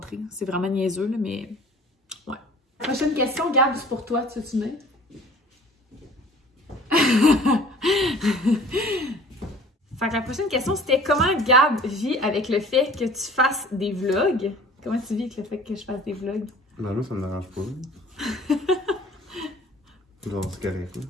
C'est vraiment niaiseux, là, mais ouais. Prochaine question, Gab, c'est pour toi, tu veux-tu venir? Fait que la prochaine question, c'était comment Gab vit avec le fait que tu fasses des vlogs? Comment tu vis avec le fait que je fasse des vlogs? Ben là, ça me dérange pas. Genre, c'est correct, là.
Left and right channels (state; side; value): normal; both; correlation 0.48